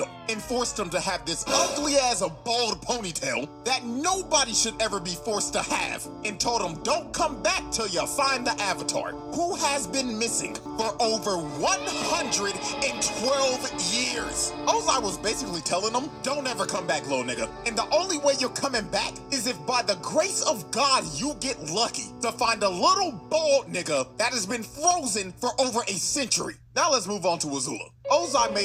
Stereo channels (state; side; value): identical; both; correlation 1.00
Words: and forced him to have this ugly as a bald ponytail that nobody should ever be forced to have, and told him don't come back till you find the Avatar, who has been missing for over 112 years. Ozai was basically telling him, don't ever come back, little nigga. And the only way you're coming back is if by the grace of God you get lucky to find a little bald nigga that has been frozen for over a century. Now let's move on to Azula. Ozai